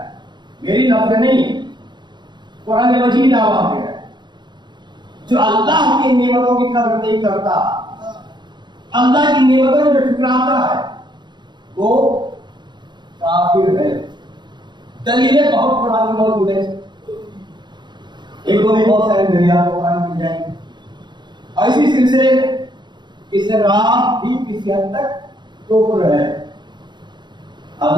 میری لفظ نہیں، قرآن مجید آواز ہے۔ جو اللہ کی نعمتوں کی قدر نہیں کرتا، اللہ کی نعمتوں کو ٹھکراتا ہے، وہ کافر ہے۔ دلیلیں بہت قرآن میں موجود ہیں، ایک دو میں بہت سارے دلیل قرآن مل جائیں گے، اور اسی سلسلے اسلام بھی کسی حد تک کفر ہے۔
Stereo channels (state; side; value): late; left; 0.22 ms